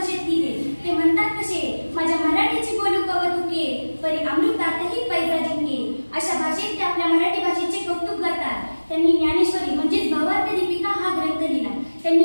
दिले. ते म्हणतात कसे, माझ्या मराठीची बोलू कवतुके परी अमृतातही पैजा जिंके. अशा भाषेत ते आपल्या मराठी भाषेचे कौतुक करतात. त्यांनी ज्ञानेश्वरी म्हणजेच भावार्थ दीपिका हा ग्रंथ लिहिला. त्यांनी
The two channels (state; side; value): inverted; both; correlation -1.00